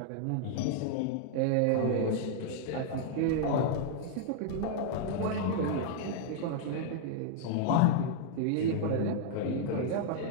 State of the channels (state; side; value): different; both; correlation -0.01